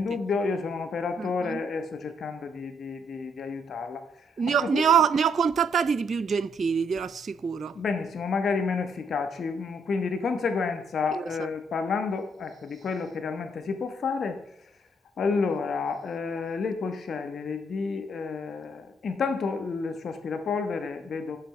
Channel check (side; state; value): both; normal; correlation 0.71